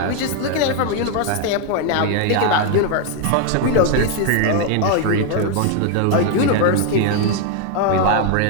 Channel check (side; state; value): both; different; correlation 0.01